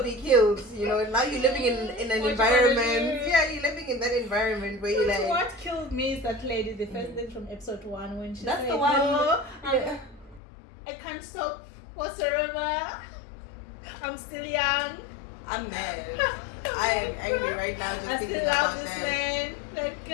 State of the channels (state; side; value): drops out; right; at 10.4 s